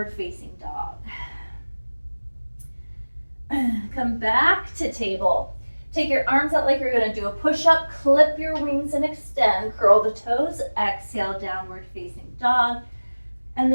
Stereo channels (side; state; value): both; inverted; correlation -1.00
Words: facing dog. Come back to table. Take your arms out like you're going to do a push-up. Clip your wings and extend. Curl the toes. Exhale, downward facing dog. And